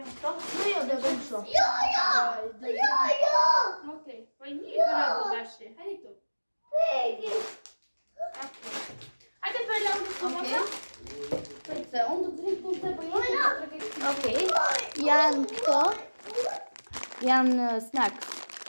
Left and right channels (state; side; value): inverted; both; correlation -1.00